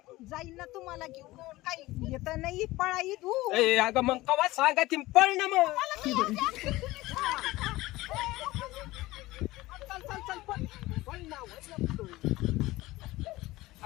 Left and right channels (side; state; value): right; quieter; 18.7 dB